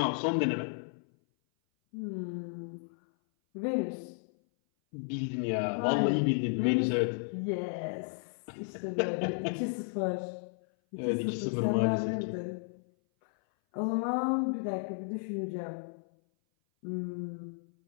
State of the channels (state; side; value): silent; right; 56 dB below the other